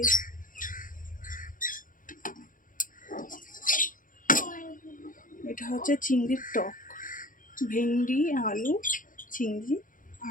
এটা হচ্ছে চিংড়ির টক, ভেন্ডি আলু চিংড়ি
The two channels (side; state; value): right; late; 0.39 ms